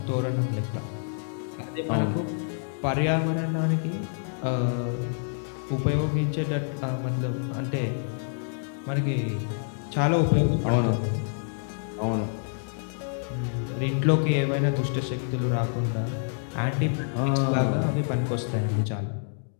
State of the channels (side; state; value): right; silent; digital silence